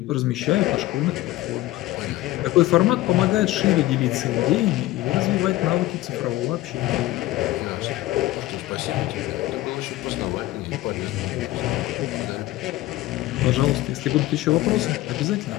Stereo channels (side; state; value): right; quieter; 16.6 dB